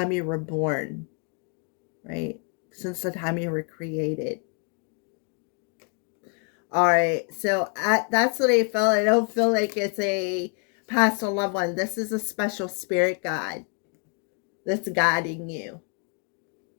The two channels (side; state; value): right; quieter; 37.5 dB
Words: you were born, right? Since the time you were created. All right, so that's what I felt. I don't feel like it's a past or loved one. This is a special spirit guide that's guiding you.